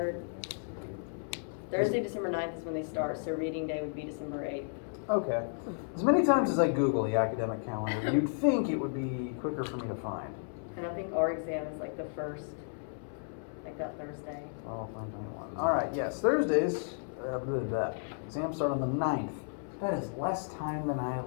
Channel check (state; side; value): silent; right; 56 dB below the other